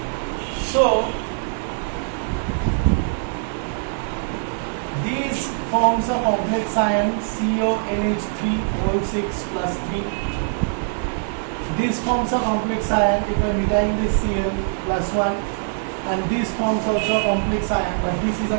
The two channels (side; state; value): left; silent; digital silence